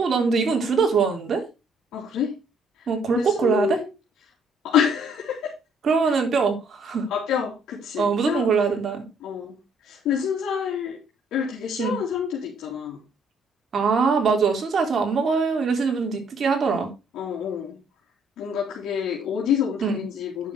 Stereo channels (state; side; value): normal; both; correlation 0.64